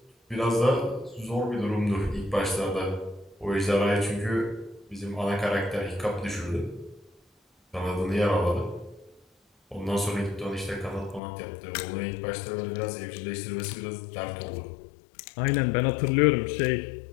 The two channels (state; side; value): drops out; right; at 11.2 s